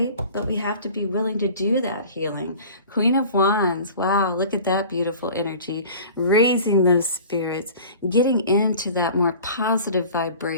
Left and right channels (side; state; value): both; inverted; correlation -0.42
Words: But we have to be willing to do that healing. Queen of Wands, wow, look at that beautiful energy, raising those spirits, getting into that more positive